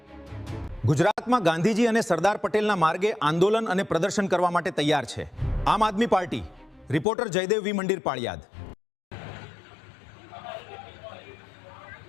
ગુજરાતમાં ગાંધીજી અને સરદાર પટેલના માર્ગે આંદોલન અને પ્રદર્શન કરવા માટે તૈયાર છે આમ આદમી પાર્ટી। રિપોર્ટર જયદેવ વી મંદિર, પાળિયાદ।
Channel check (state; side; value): drops out; right; at 7.1 s